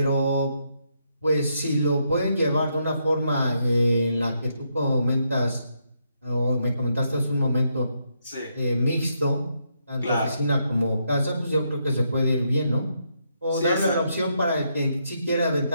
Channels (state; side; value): inverted; both; correlation -0.78